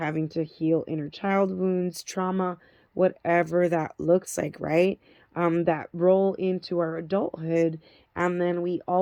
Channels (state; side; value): identical; both; correlation 1.00